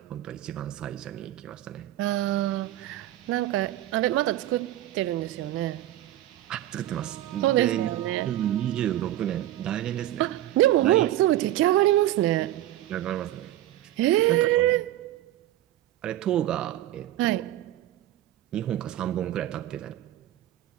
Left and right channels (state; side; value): quieter; left; 14.0 dB